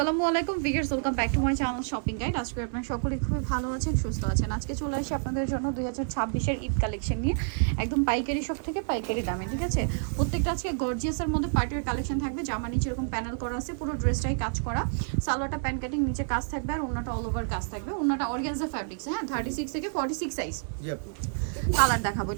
আলাইকুম viewers, welcome back to my channel shopping guide. আজকে আপনারা সকলেই খুবই ভালো আছেন, সুস্থ আছেন। আজকে চলে আসি আপনাদের জন্য 2026-এর ঈদ কালেকশন নিয়ে, একদম পাইকারি শপ থেকে পাইকারি দামে, ঠিক আছে। প্রত্যেকটা আজকে গর্জিয়াসের মধ্যে পার্টির কালেকশন থাকবে। জামা নিচে এরকম প্যানেল করা আছে, পুরো ড্রেসটাই কাজ করা। সালোয়ারটা প্যান কাটিং, নিচে কাজ থাকবে, আর ওন্নাটা অল ওভার কাজ থাকবে। ওন্নাটা অর্গানজা ফ্যাব্রিক্স, হ্যাঁ, 36 থেকে 46 সাইজ। কালার দেখাবো,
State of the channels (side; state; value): left; silent; digital silence